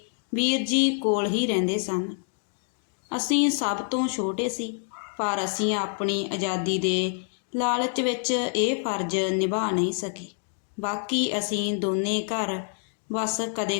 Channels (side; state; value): right; silent; 60 dB below the other